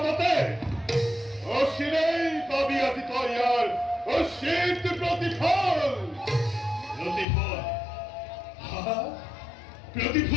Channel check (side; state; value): right; drops out; at 7.2 s